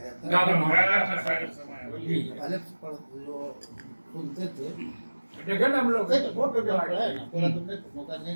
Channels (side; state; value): both; inverted; correlation -1.00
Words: है। गागर पहले जो सुनते थे देखे ना हम लोग बहुत पढ़ा है ना, पूरा तुमने मौका नहीं